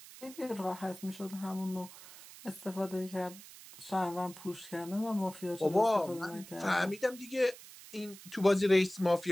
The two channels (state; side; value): noise; right; hiss, 17 dB below the sound